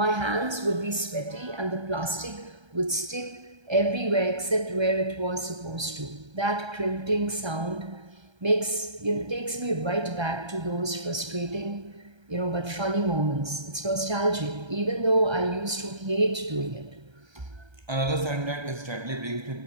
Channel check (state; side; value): late; left; 1.3 ms